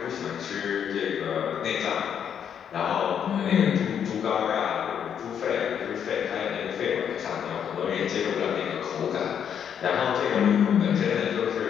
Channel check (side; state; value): right; quieter; 8.4 dB